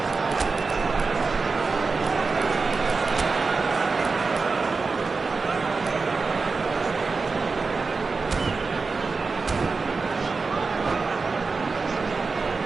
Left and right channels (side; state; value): left; quieter; 4.3 dB